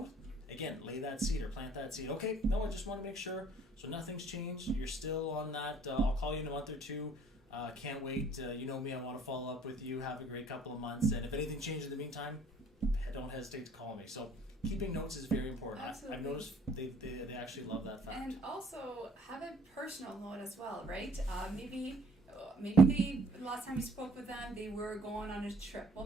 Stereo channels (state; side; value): normal; both; correlation 0.58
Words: again, lay that seed or plant that seed. Okay, no, I just want to make sure. So nothing's changed. You're still on that. I'll call you in a month or two. Can't wait. You know me, I want to follow up with you. Have a great couple of months. And if anything changes in the meantime, don't hesitate to call me. So keeping notes is very important. I've noticed they actually love that fact. And also have a personal note as well, right? Maybe the last time you spoke with them, they were going on a trip. Well,